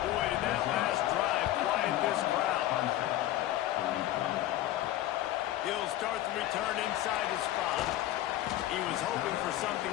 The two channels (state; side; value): quieter; right; 14.2 dB